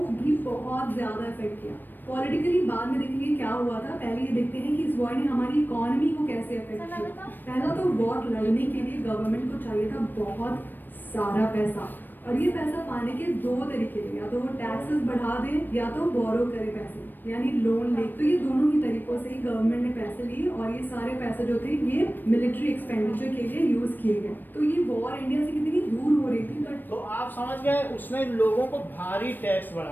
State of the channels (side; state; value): right; late; 0.092 ms